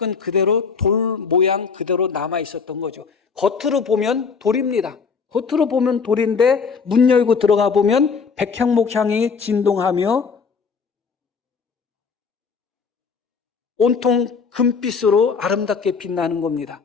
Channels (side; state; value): right; quieter; 5.5 dB